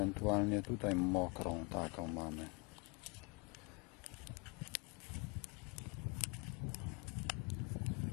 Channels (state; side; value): quieter; right; 30.8 dB